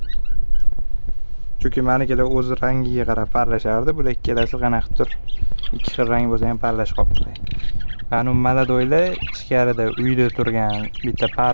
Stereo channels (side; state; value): both; inverted; correlation -1.00